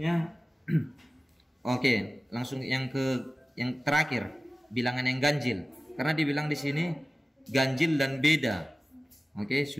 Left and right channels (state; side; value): normal; both; correlation 0.97